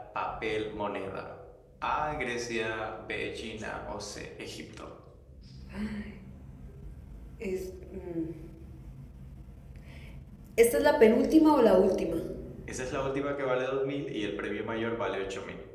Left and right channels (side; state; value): both; identical; correlation 1.00